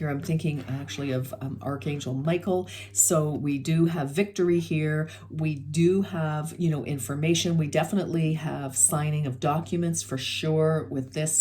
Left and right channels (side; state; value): both; identical; correlation 1.00